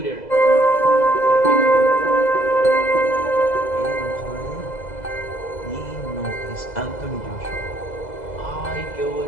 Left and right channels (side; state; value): right; late; 2.0 ms